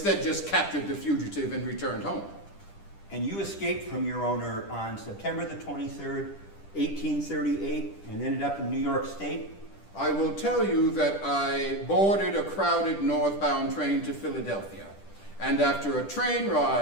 just captured the fugitive and returned home. And you escaped from your owner on September the 23rd, 1838, and ended up in New York State? I will tell you that I boarded a crowded northbound train to Philadelphia, and after a train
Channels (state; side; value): late; right; 10 ms